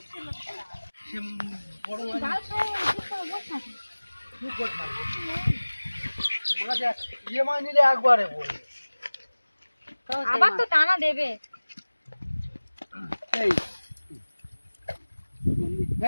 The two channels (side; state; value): both; inverted; correlation -1.00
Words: আবার তো টানা দেবে।